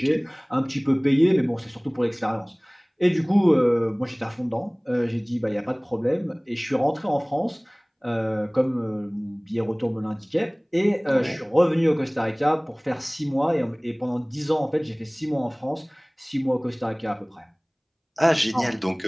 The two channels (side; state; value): both; identical; correlation 1.00